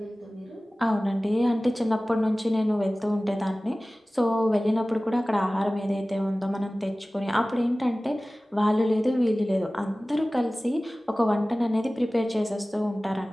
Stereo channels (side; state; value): both; normal; correlation 0.98